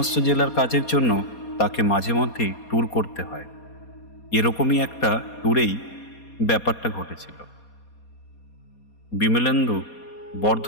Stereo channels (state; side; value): late; right; 4.2 ms